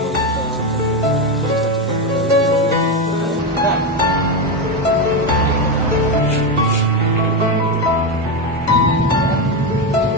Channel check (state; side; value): normal; both; correlation 0.12